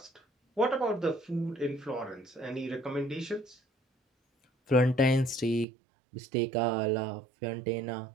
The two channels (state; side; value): drops out; left; at 5.7 s